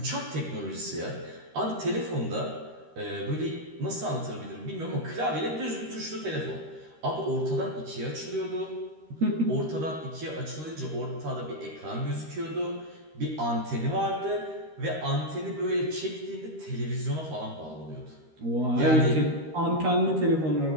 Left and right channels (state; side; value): late; left; 13 ms